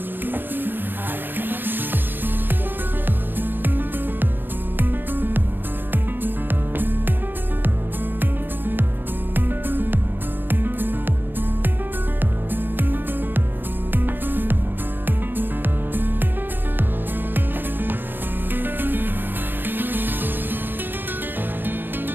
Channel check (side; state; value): left; late; 0.095 ms